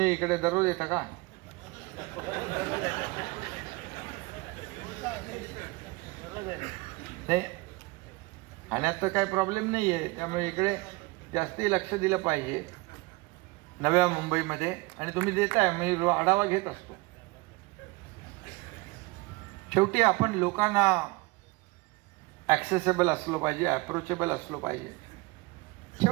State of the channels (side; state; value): left; quieter; 24.3 dB